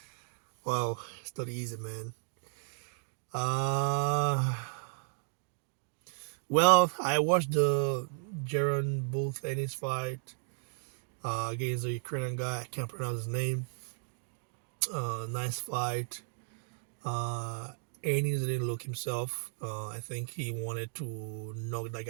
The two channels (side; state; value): left; silent; digital silence